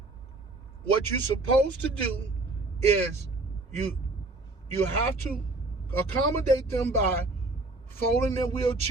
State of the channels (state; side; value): quieter; left; 3.1 dB